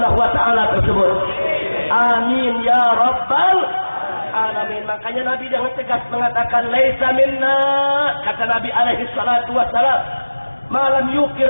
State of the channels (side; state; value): both; inverted; correlation -1.00